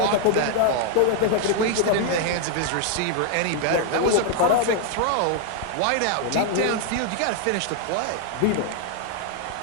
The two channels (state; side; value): different; both; correlation 0.00